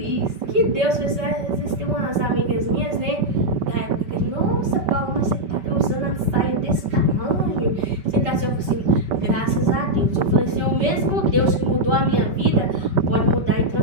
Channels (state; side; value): late; left; 5.2 ms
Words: Que Deus fez, às vezes tem umas amigas minhas, né? Da época que, nossa, Paula, mas você tá usando a saia desse tamanho. Você tá assim, eu falei assim, graças a Deus. Eu falei assim, o mesmo Deus que mudou a minha vida, pode mudar e